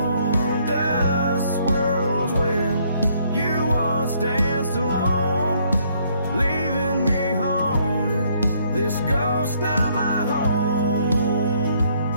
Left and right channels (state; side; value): inverted; both; correlation -0.67